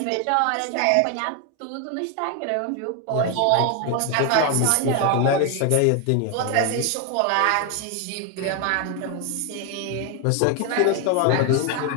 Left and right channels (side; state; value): both; different; correlation 0.01